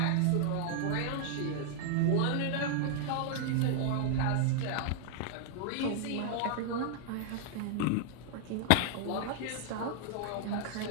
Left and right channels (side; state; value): both; different; correlation 0.00